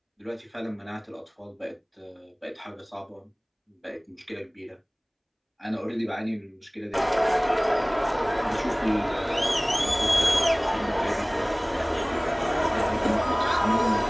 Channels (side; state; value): both; identical; correlation 1.00